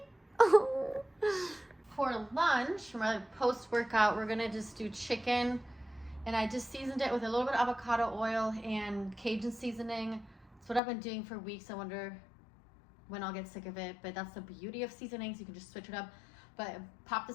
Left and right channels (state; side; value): drops out; right; at 10.8 s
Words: Oh. For lunch, for my post-workout, we're gonna just do chicken, and I just seasoned it with a little bit of avocado oil and Cajun seasoning. That's what I've been doing for weeks. I wonder when I'll get sick of it, but that's the beauty of seasonings. You can just switch it up. But pop